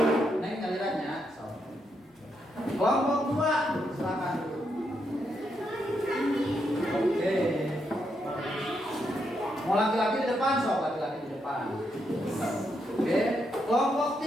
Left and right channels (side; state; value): both; normal; correlation 0.80